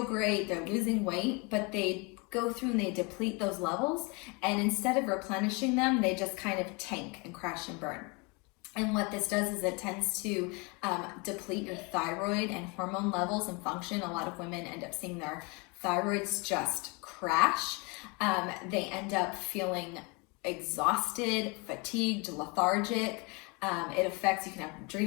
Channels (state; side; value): quieter; right; 29.7 dB